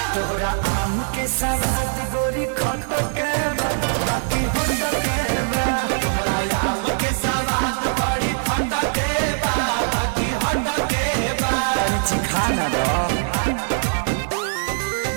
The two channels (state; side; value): silent; left; 64 dB below the other